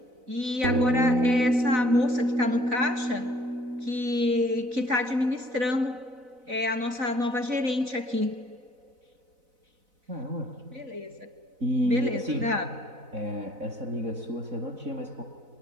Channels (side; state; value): left; late; 4.0 ms